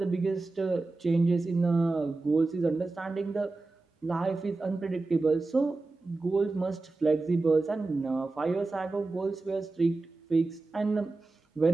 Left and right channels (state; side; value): quieter; left; 3.4 dB